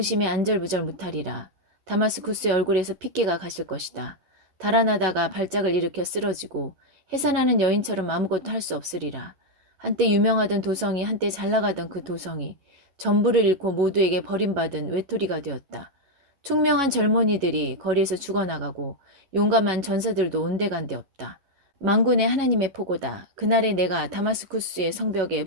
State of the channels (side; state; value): left; late; 11 ms